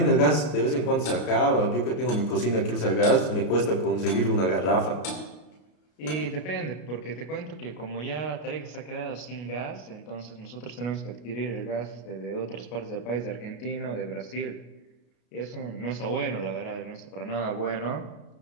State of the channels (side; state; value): right; late; 33 ms